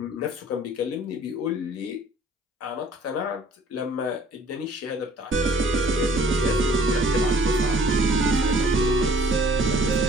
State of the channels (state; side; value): normal; both; correlation 0.54